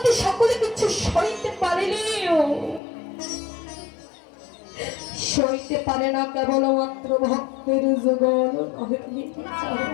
সকলে কিছু সইতে পারেনিও, সইতে পারে না কেবলমাত্র ভক্তের যুগল নয়নের জল।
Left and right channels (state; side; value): drops out; right; at 2.8 s